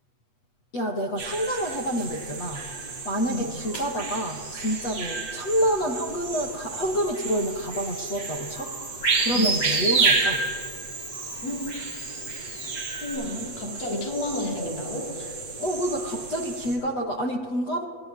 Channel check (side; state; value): right; late; 8.2 ms